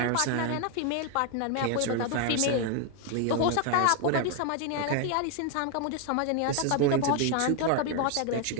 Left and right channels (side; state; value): both; different; correlation 0.01